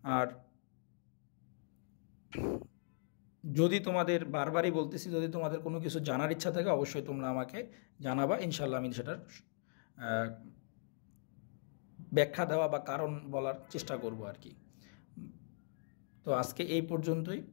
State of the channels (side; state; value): right; silent; digital silence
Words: আর যদি তোমাদের বারবারই বলতেছি, যদি তোমাদের কোনো কিছু জানার ইচ্ছা থাকে অবশ্যই তোমরা আমাকে জানাবা, ইনশাল্লাহ আমি সেটার ব্যাখ্যা দেওয়া বা কারণ বলার চেষ্টা করব আর কি। তো আজকে এই পর্যন্তই,